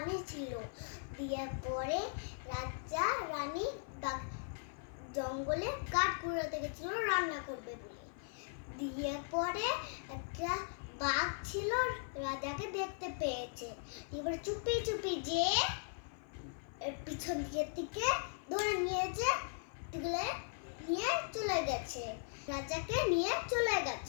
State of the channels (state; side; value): silent; right; 52 dB below the other